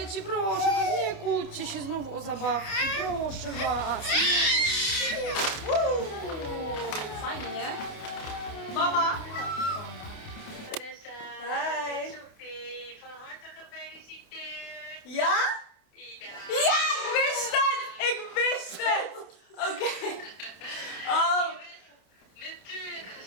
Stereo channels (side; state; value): right; late; 28 ms